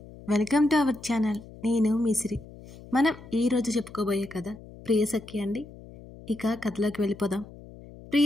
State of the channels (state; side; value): noise; left; hum, 18 dB below the sound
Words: Welcome to our channel. నేను మీ సిరి. మనం ఈరోజు చెప్పుకోబోయే కథ ప్రియసఖి అండి. ఇక కథలోకి వెళ్ళిపోదాం.